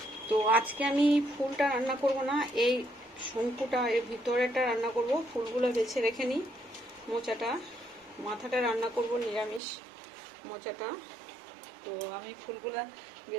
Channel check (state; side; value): drops out; left; at 9.6 s